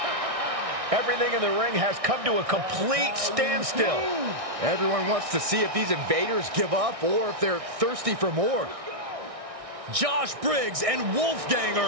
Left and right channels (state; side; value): late; left; 1.6 ms